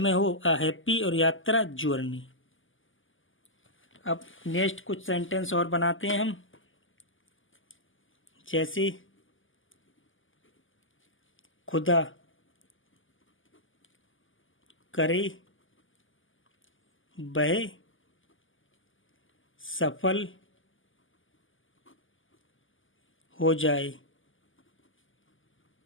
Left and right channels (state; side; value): late; right; 0.58 ms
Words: हो, अ हैप्पी, और यात्रा जर्नी। अब नेक्स्ट कुछ सेंटेंस और बनाते हैं हम, जैसे खुदा करे वह सफल हो जाए,